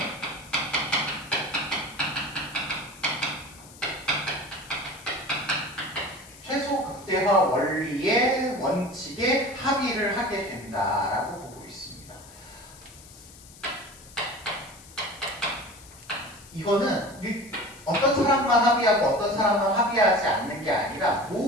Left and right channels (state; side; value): noise; left; hiss, 20 dB below the sound